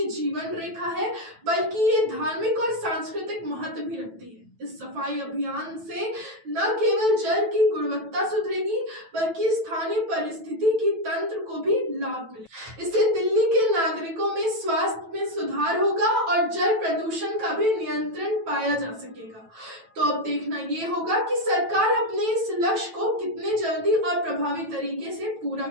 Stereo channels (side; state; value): left; late; 9.1 ms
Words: जीवन रेखा है, बल्कि ये धार्मिक और सांस्कृतिक महत्व भी रखती है। इस सफाई अभियान से न केवल जल की गुणवत्ता सुधरेगी, बल्कि स्थानीय परिस्थिति की तंत्र को भी लाभ मिलेगा। इससे दिल्ली के नागरिकों में स्वास्थ्य में सुधार होगा और जल प्रदूषण का भी नियंत्रण पाया जा सकेगा। तो अब देखना ये होगा कि सरकार अपने इस लक्ष्य को कितने जल्दी और प्रभावी तरीके से पूरा